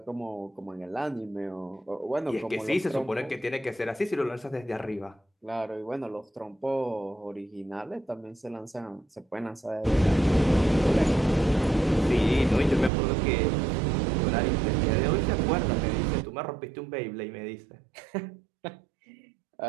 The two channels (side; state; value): left; drops out; at 12.9 s